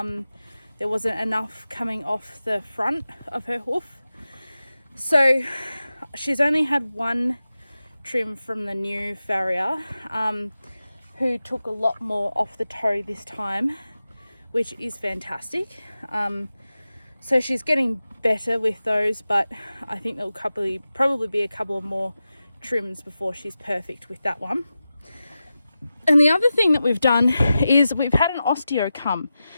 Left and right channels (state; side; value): inverted; both; correlation -0.93